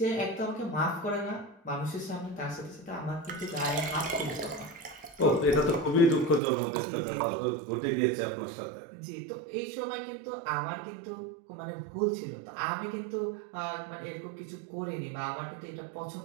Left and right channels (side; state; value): left; drops out; at 6.4 s